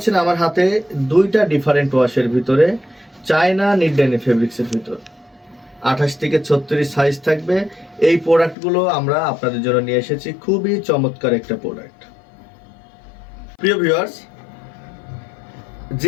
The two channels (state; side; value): drops out; right; at 8.6 s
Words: আমার হাতে দুইটা ডিফারেন্ট ওয়াশের ভিতরে চায়না নিট ডেনিম ফেব্রিক্সের ভিতর 28 থেকে 36 সাইজ থাকবে। এই প্রোডাক্টগুলো আমরা আপনাদের জন্য নিয়ে এসেছি, খুবই চমৎকার একটা প্রোডাক্ট। প্রিয় ভিউয়ার্স,